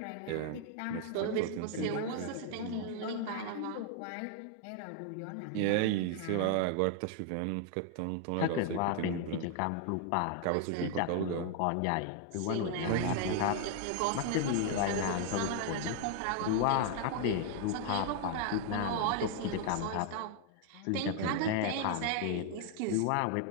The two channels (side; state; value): both; different; correlation 0.00